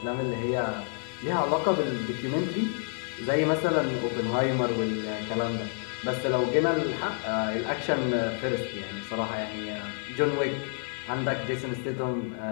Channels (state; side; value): silent; right; 59 dB below the other